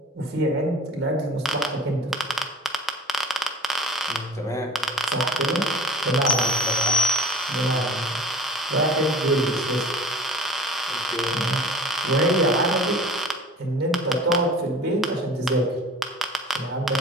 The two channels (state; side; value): normal; both; correlation 0.42